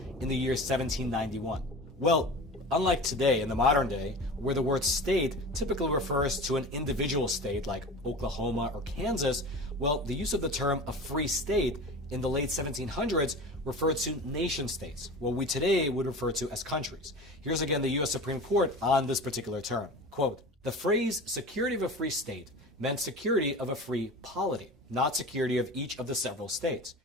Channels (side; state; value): both; normal; correlation 0.34